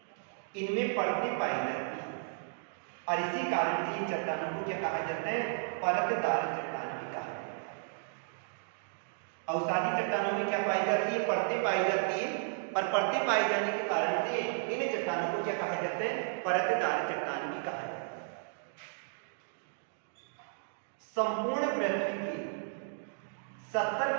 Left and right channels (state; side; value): silent; left; digital silence